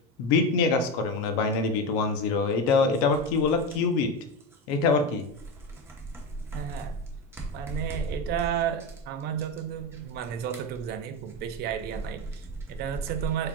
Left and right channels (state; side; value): normal; both; correlation 0.17